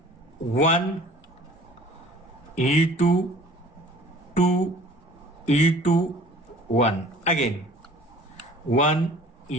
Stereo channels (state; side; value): normal; both; correlation 0.49